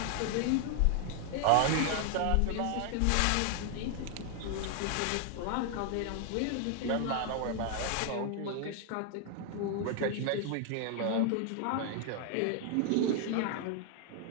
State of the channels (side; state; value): both; different; correlation 0.00